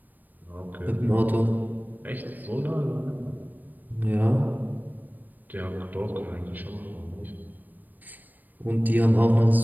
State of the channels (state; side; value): late; left; 0.088 ms